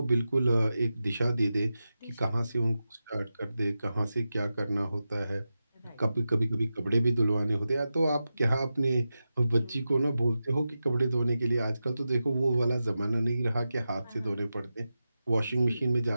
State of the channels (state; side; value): inverted; both; correlation -0.92